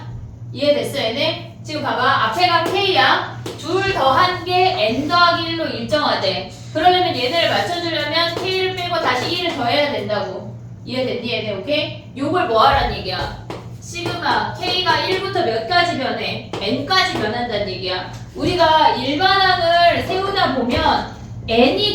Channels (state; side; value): identical; both; correlation 1.00